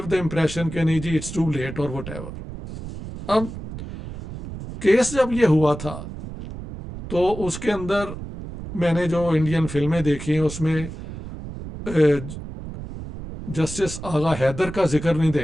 द इम्प्रेशन कि नहीं जी इट्स टू लेट और वट एवर. अब केस जब ये हुआ था तो उसके अंदर मैंने जो इंडियन फिल्में देखी उसमें जस्टिस आगा हैदर का जिक्र नहीं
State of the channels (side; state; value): right; noise; rumble, 10 dB below the sound